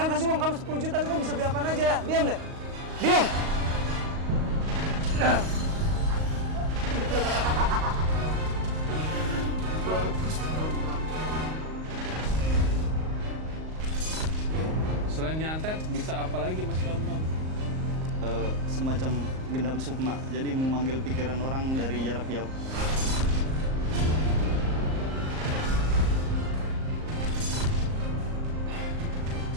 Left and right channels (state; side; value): late; left; 38 ms